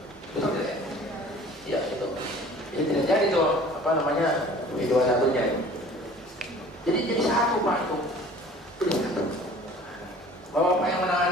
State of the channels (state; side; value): normal; both; correlation 0.48